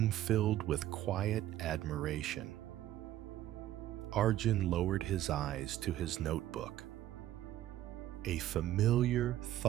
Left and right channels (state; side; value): quieter; left; 13.3 dB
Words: filled with quiet admiration. Arjun lowered his eyes to his notebook. A familiar